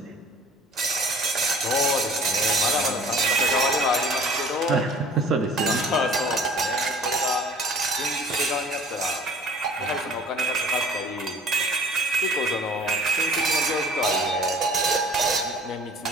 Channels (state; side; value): normal; both; correlation 0.48